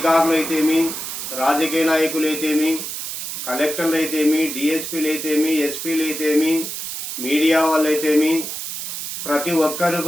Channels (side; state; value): right; noise; hiss, 6 dB below the sound